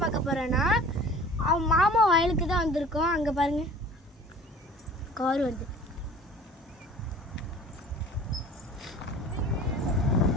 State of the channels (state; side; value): normal; both; correlation 0.46